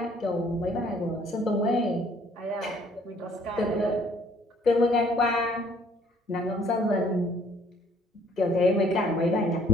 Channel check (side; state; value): both; normal; correlation 0.60